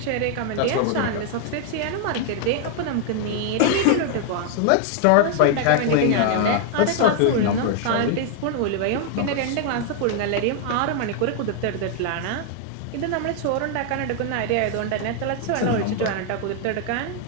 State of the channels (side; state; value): both; different; correlation 0.00